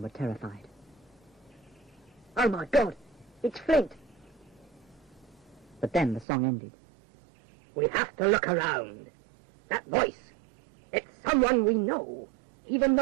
were terrified. Oh my God, it's Flint. But then the song ended. We have to look around. That voice, it's someone we know, even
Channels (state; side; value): drops out; left; at 6.2 s